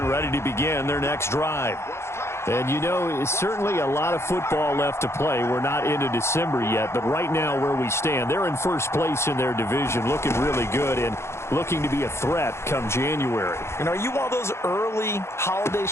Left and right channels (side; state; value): right; late; 0.13 ms